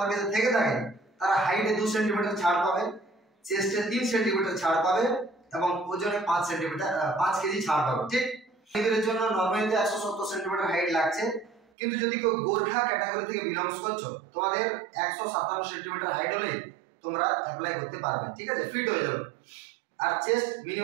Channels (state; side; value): drops out; left; at 11.6 s